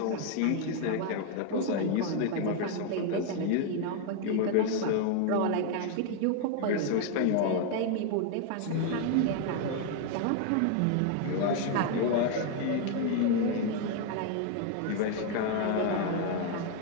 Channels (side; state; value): both; different; correlation 0.01